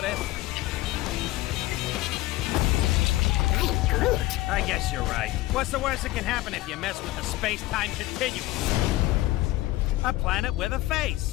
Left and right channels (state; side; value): quieter; right; 17.6 dB